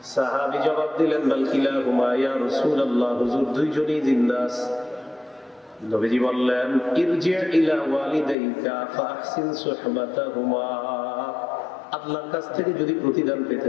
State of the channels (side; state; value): right; drops out; at 8.3 s